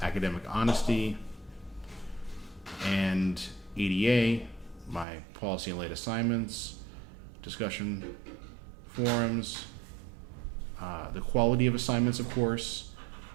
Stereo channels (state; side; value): drops out; left; at 5.1 s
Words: academic honesty, and ADA, my policy and late assignments, discussion forums, the quality of assignments, of course,